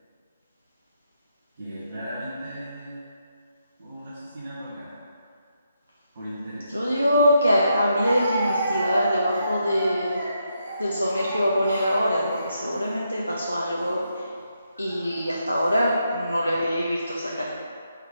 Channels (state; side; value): inverted; both; correlation -0.80